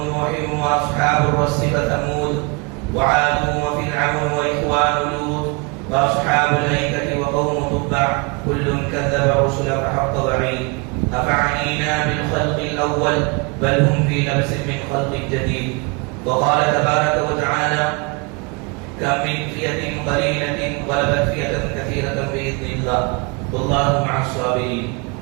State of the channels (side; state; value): left; quieter; 30.1 dB